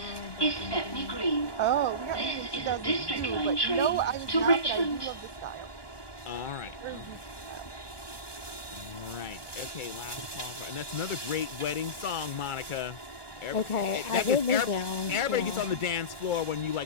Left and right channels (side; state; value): right; late; 1.4 ms